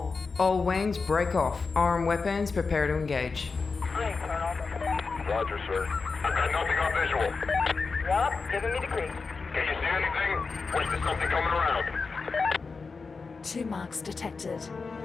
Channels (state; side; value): quieter; right; 4.5 dB